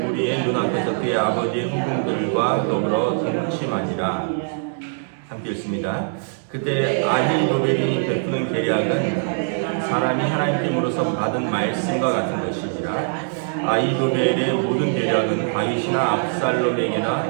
무리의 눈앞에서 그의 아버지의 후궁들과 더불어 동침하니라. 함께 읽습니다. 그때 아히도벨이 베푸는 계략은 사람이 하나님께로서 받은 말씀과 같은 것이니라. 아히도벨의 모든 계략은 다윗이나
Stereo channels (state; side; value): silent; left; 64 dB below the other